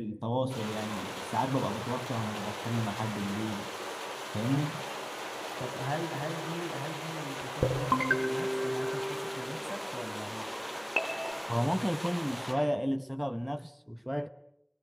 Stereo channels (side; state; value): both; identical; correlation 1.00